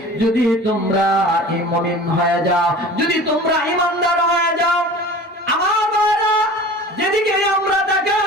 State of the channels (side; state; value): both; normal; correlation 0.40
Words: যদি তোমরা মুমিন হয়ে যাও, যদি তোমরা ঈমানদার হয়ে যাও। আমার ভাইরা, যেদিকে আমরা